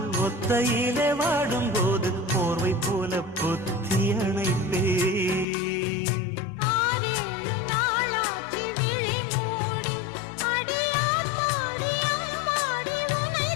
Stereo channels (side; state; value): right; drops out; at 5.5 s